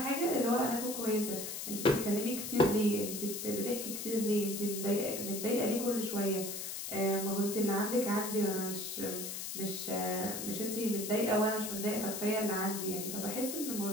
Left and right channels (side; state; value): left; noise; hiss, 5 dB below the sound